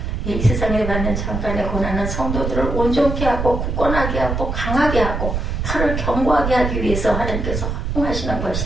이 세상에 받는 잠깐의 고난은 성도들을 온전케 하고 굳건하게 하고 강하게 하고 털을 견고하게 하기 위해서 하나님께서 허용하시는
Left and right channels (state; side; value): noise; right; rumble, 2 dB below the sound